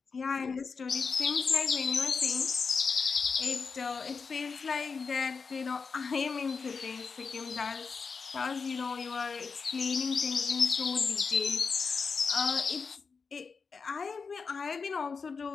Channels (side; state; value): right; quieter; 5.1 dB